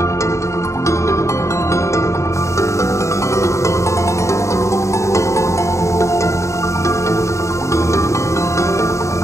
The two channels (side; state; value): right; late; 0.14 ms